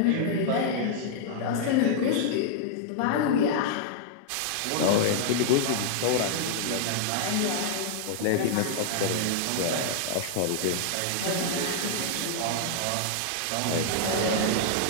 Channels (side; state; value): both; different; correlation -0.01